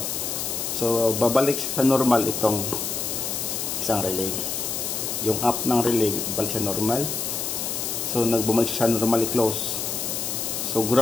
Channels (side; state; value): left; noise; hiss, 3 dB below the sound